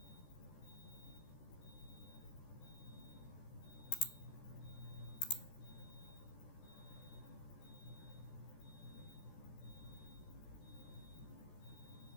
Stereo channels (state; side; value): late; right; 14 ms